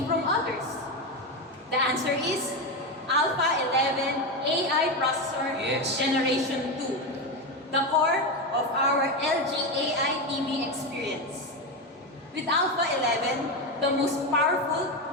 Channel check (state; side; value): normal; both; correlation 0.14